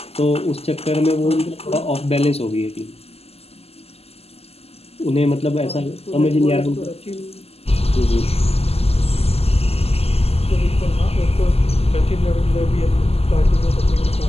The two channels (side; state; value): right; late; 0.29 ms